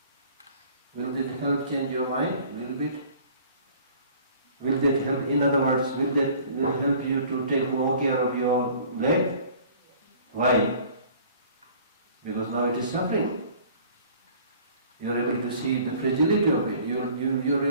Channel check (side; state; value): both; inverted; correlation -0.50